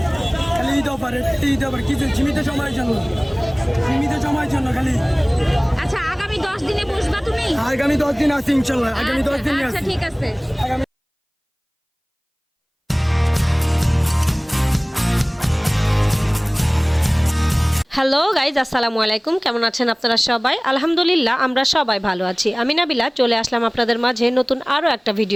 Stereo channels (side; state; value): both; identical; correlation 1.00